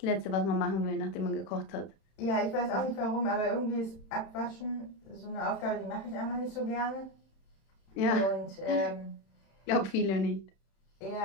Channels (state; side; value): late; right; 31 ms